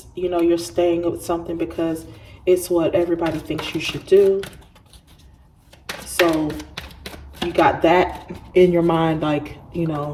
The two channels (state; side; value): identical; both; correlation 1.00